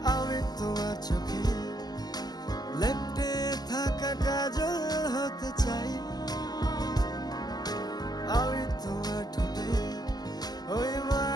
আমি তোমার চোখে লেপ্টে থাকা কাজল হতে চাই, আমি তোমার ঠোঁটে ওই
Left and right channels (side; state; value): right; late; 0.20 ms